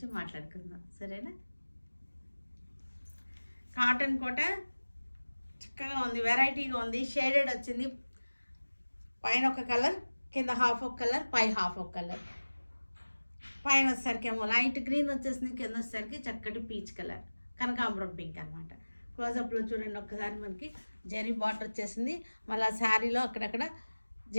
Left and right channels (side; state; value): both; inverted; correlation -1.00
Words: మాట్లాడుకుందాం, సరేనా? కాటన్ కోట చక్కగా ఉంది, వెరైటీగా ఉంది. షేడెడ్ వచ్చింది, పైన ఒక కలర్, కింద హాఫ్ ఒక కలర్, పై హాఫ్ ఒక కలర్. పైన వచ్చేసరికి ఏమో లైట్ గ్రీన్ వచ్చేసింది, కింద వచ్చేసరికి చక్కటి పీచ్ కలర్, కనకాంబరం పింక్ అనమాట. క్లోజప్లో చూడండి ఒక్కసారి, మనకి జెరీ బార్డర్ వచ్చేసింది. మళ్ళీ శారీలో అక్కడక్కడ